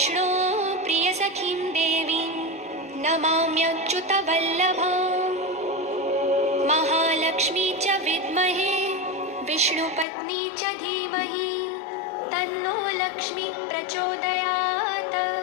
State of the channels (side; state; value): right; drops out; at 10.1 s